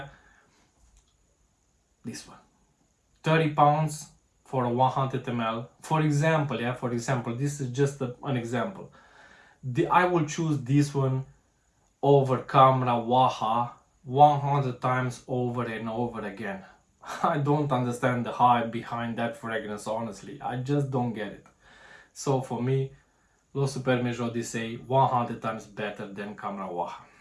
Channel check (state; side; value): identical; both; correlation 1.00